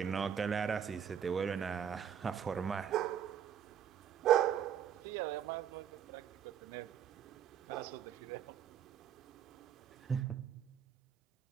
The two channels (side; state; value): left; quieter; 8.9 dB